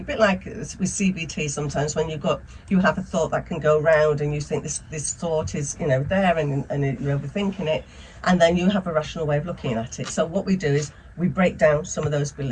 bit like with CBT sometimes, when you have a thought that can go round, and you think this thought is there, and you're overthinking it, and then you have a rational way of looking at it. So what we do is we break down some of those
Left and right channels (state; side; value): identical; both; correlation 1.00